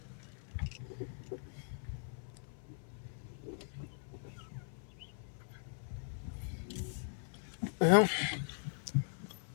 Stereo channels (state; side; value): silent; right; 51 dB below the other